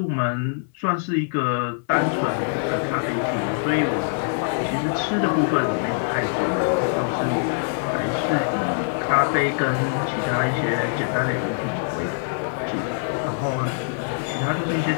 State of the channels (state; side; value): silent; right; 63 dB below the other